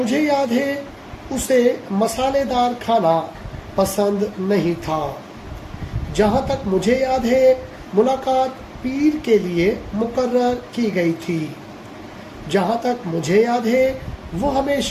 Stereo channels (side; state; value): both; identical; correlation 1.00